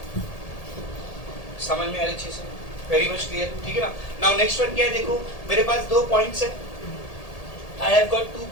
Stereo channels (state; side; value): late; right; 1.8 ms